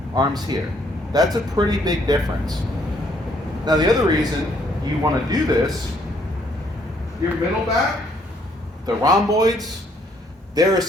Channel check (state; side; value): normal; both; correlation 0.67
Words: arms here. That's a pretty big difference. Now the other reason you want to do this, your middle back, the rhomboids, they're